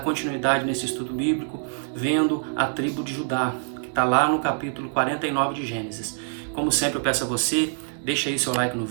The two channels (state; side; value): silent; left; digital silence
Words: nesse estudo bíblico, vendo a tribo de Judá, que está lá no capítulo 49 de Gênesis. Como sempre eu peço a você, deixa aí seu like no